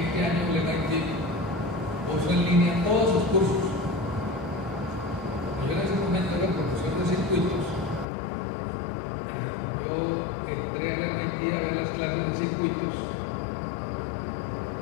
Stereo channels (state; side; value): drops out; right; at 8.1 s